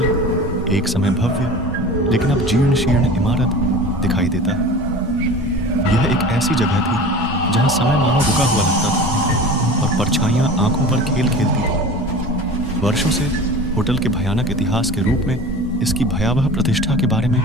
एक समय भव्य लेकिन अब जीर्ण शीर्ण इमारत दिखाई देता है। यह एक ऐसी जगह थी जहां समय मानो रुका हुआ लगता था और परछाइयां आंखों पर खेल खेलती थी। वर्षों से होटल के भयानक इतिहास के रूप में इसकी भयावह प्रतिष्ठा के बारे में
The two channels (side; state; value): both; normal; correlation 0.36